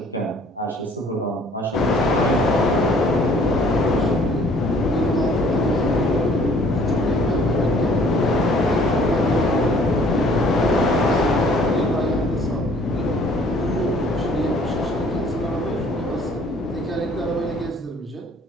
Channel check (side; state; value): both; normal; correlation 0.57